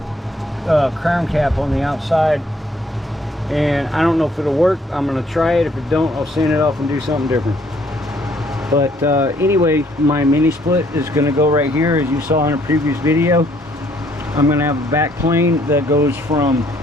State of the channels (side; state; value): both; normal; correlation 0.65